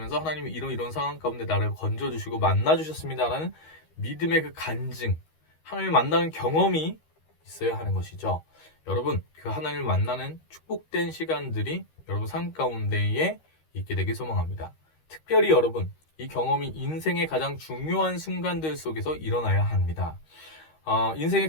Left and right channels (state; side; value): late; right; 13 ms